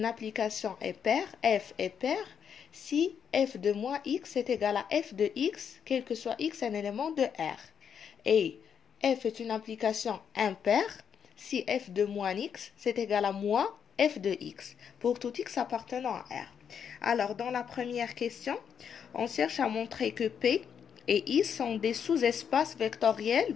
application est paire, F est paire, si F de moins X est égal à F de X, quel que soit X un élément de R. Et F est une application impaire si F de moins X, c'est égal à moins F de X, pour tout X appartenant à R. Alors, dans la première question, on cherche à montrer que P et I sont des sous-espaces vectoriels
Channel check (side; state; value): right; quieter; 7.7 dB